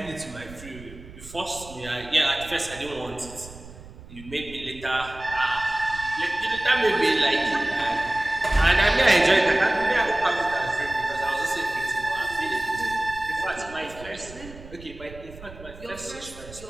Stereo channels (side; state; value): right; noise; rumble, 17 dB below the sound